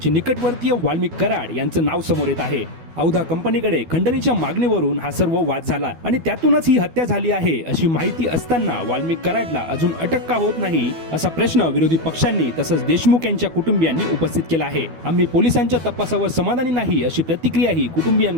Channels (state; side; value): late; left; 12 ms